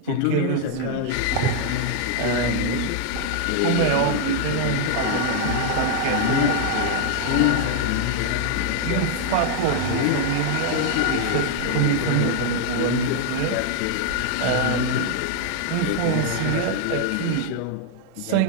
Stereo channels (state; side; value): different; both; correlation 0.00